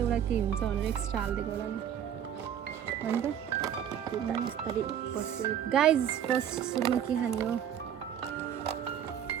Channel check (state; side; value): quieter; left; 9.4 dB